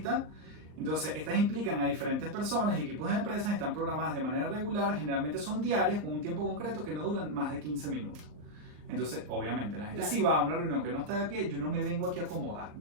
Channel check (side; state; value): left; late; 39 ms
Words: Entonces, estas implican a diferentes personas y equipos de empresas, están programadas de manera regular, generalmente son diarias, con un tiempo concreto que no duran más de 15 minutos. Entonces, obviamente, la gente Claro. si va a una reunión que no está de pie, yo no me vengo aquí a acomodar.